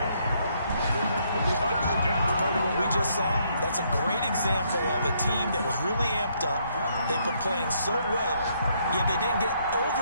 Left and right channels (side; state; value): both; inverted; correlation -0.71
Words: Part of what we just saw, that's a great example of a team that was really amped up. They've been playing so well, yet they didn't get